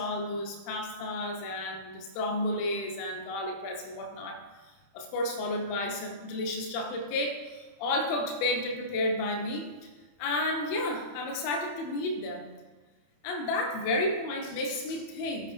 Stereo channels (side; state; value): right; late; 30 ms